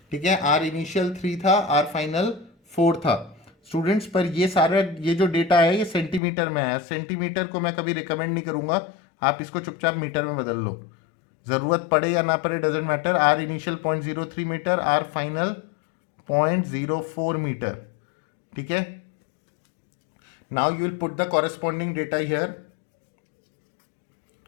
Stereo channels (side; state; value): right; drops out; at 6.2 s